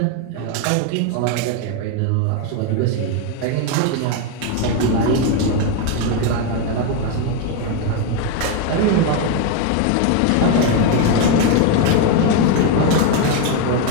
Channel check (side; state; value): both; different; correlation 0.01